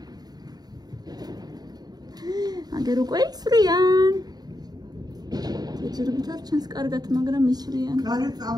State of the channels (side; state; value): left; late; 0.19 ms